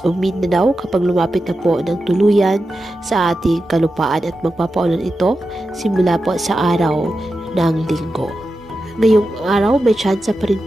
o Mindanao kapag lumapit na po ng tuluyan sa ating kalupaan at magpapaulan ito simula po sa araw ng Linggo. Ngayong araw may tsansa pa rin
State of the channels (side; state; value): both; normal; correlation 0.90